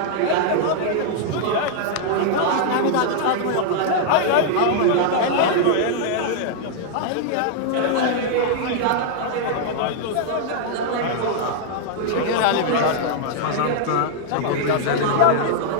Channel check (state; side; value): different; both; correlation -0.01